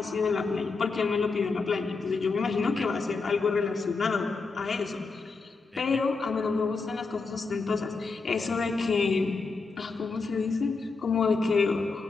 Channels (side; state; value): right; quieter; 4.2 dB